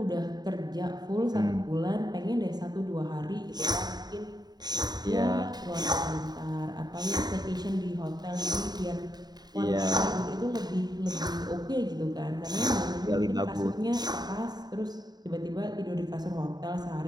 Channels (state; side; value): late; left; 0.20 ms